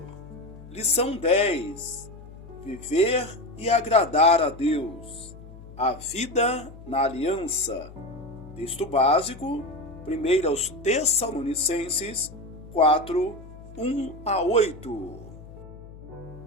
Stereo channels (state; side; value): noise; left; hum, 17 dB below the sound